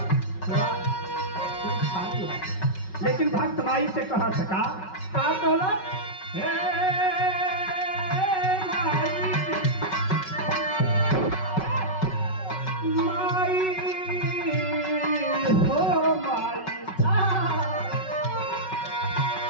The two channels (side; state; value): right; late; 5.3 ms